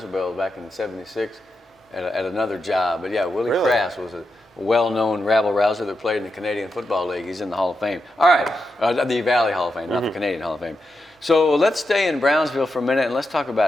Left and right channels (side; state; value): both; normal; correlation 0.87